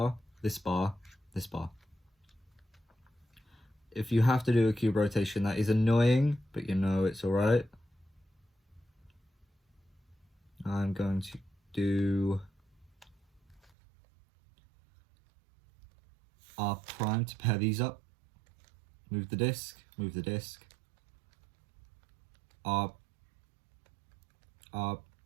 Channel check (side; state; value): left; drops out; at 13.7 s